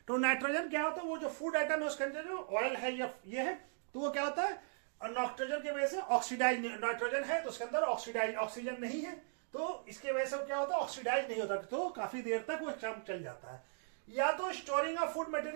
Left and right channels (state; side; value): silent; left; digital silence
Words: तो नाइट्रोजन क्या होता है, वो जो फूड आइटम है उसके अंदर जो ऑयल है या ये है, तो वो क्या होता है, नाइट्रोजन की वजह से ऑक्सीडाइज, नाइट्रोजन है तो उसके अंदर ऑक्सीजन नहीं है, तो इसके वजह से क्या होता है, ऑक्सीडाइज नहीं होता, तो काफी देर तक वो चल जाता है। या तो storing of food